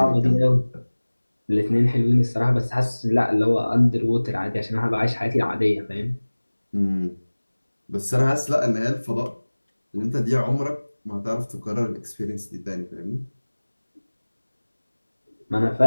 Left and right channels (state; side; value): inverted; both; correlation -1.00